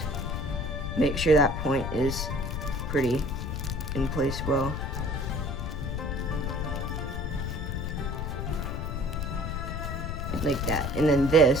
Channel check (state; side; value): noise; left; rumble, 3 dB below the sound